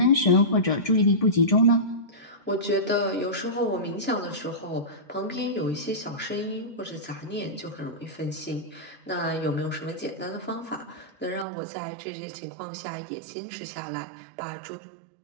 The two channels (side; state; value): left; drops out; at 11.5 s